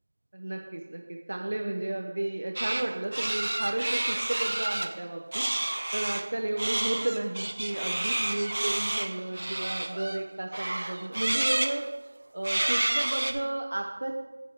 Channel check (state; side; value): inverted; both; correlation -1.00